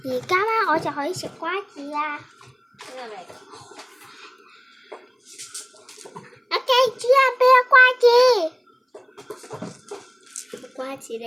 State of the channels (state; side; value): identical; both; correlation 1.00